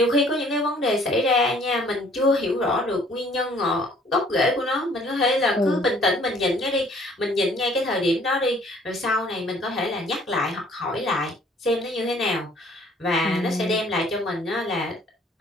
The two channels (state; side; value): normal; both; correlation 0.58